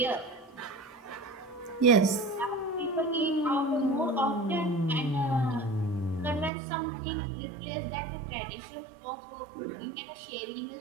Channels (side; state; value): left; drops out; at 6.5 s